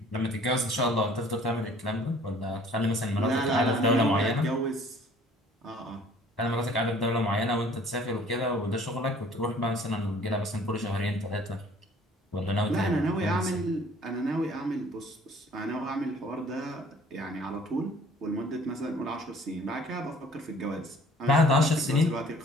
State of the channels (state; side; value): normal; both; correlation 0.54